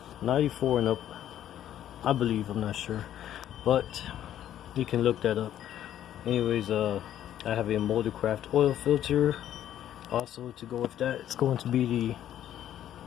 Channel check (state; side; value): quieter; right; 11.4 dB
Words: 94 and up, I believe. I'm not sure, but you can look that up. Anyways, I have a Moldcraft oil filter. Also, to go with that, it's going to be